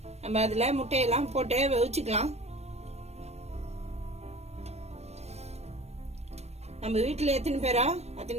நம்ம அதுல முட்டையெல்லாம் போட்டு வேவிச்சுக்கலாம். நம்ம வீட்டுல எத்தனை பேரோ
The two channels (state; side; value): late; left; 0.31 ms